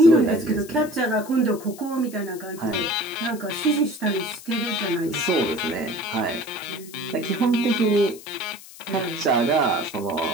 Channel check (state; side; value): noise; left; hiss, 18 dB below the sound